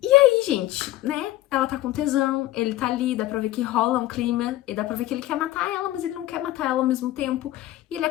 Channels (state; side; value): quieter; right; 15.5 dB